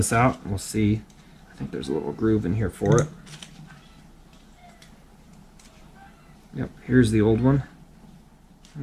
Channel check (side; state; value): both; identical; correlation 1.00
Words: out and we'll see. I think there's a little groove in here for it. Yep, here's the old one.